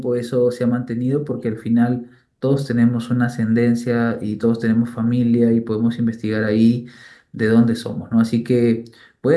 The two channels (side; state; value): both; identical; correlation 1.00